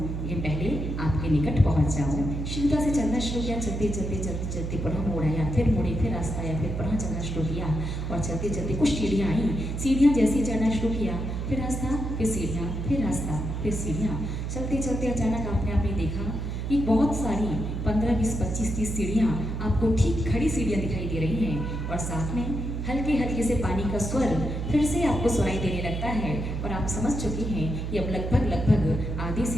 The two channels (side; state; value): right; noise; hum, 3 dB below the sound